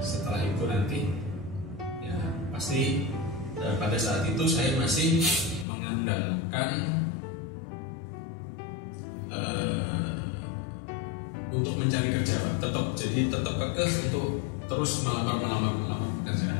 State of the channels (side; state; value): right; drops out; at 5.7 s